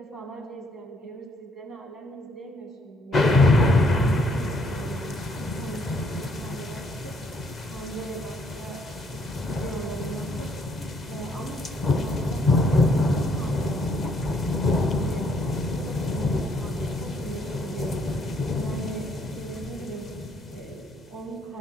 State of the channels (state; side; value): normal; both; correlation 0.69